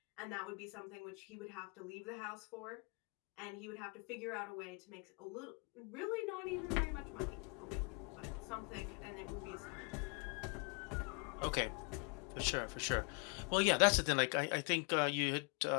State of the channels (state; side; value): quieter; right; 33.3 dB